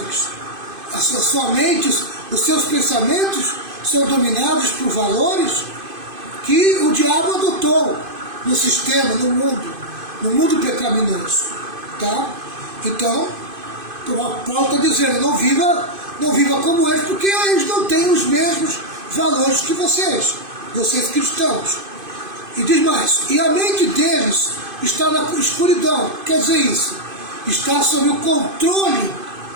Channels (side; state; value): left; late; 2.5 ms